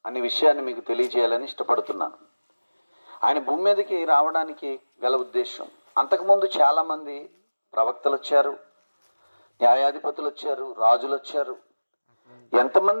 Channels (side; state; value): both; inverted; correlation -1.00